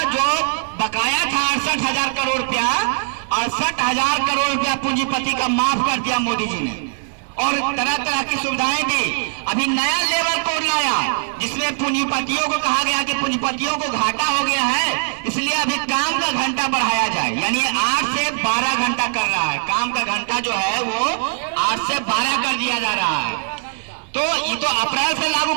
जो बकाया था 68,000 करोड़ रुपया, 68,000 करोड़ रुपया पूंजीपति का माफ कर दिया मोदी जी ने, और तरह तरह की सुविधाएं दी। अभी नया लेबर कोड लाया जिसमें पूंजीपतियों को कहा गया कि पूंजीपतियों को घाटा हो गया है, इसलिए अभी काम का घंटा बढ़ाया जाए, यानी 8 से 12 घंटा कर रहा है। काम का घंटा जो है वो 8 से 12 कर दिया जा रहा है। तो ये तो अप्रैल से लागू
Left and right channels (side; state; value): left; silent; digital silence